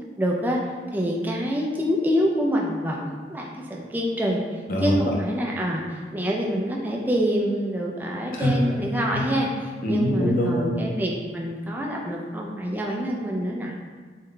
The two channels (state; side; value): normal; both; correlation 0.74